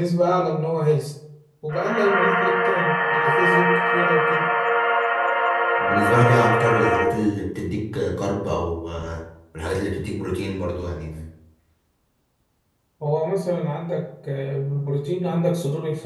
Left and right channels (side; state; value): both; identical; correlation 1.00